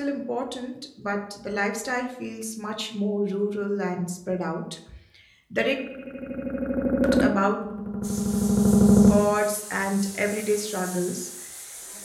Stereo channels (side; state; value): both; identical; correlation 1.00